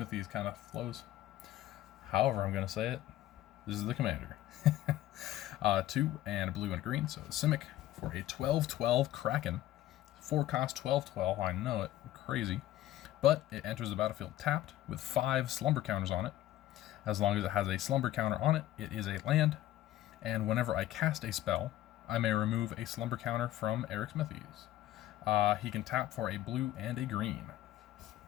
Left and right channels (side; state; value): right; quieter; 14.0 dB